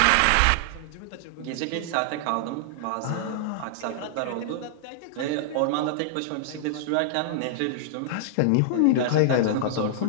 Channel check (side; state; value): both; different; correlation -0.01